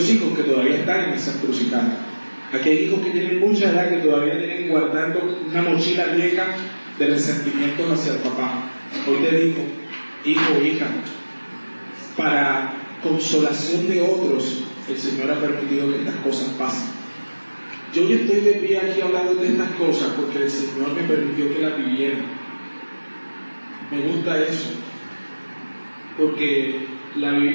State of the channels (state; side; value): inverted; both; correlation -1.00